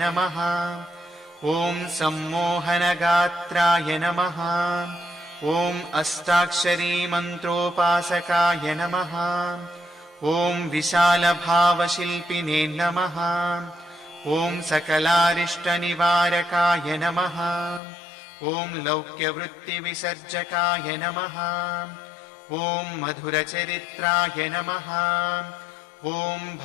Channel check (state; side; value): drops out; right; at 17.8 s